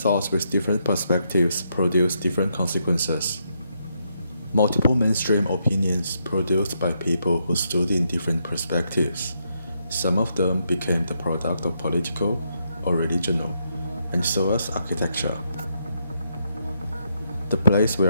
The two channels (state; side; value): inverted; both; correlation -0.78